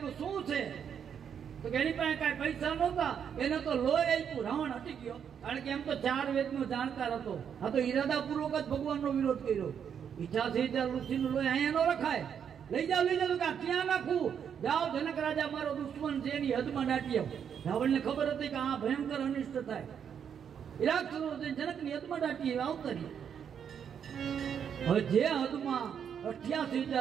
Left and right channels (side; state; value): left; quieter; 7.9 dB